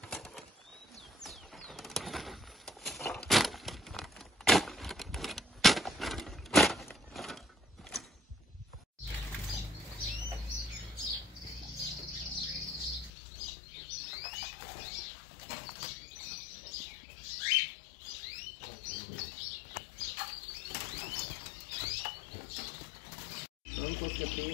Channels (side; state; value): right; drops out; at 13.1 s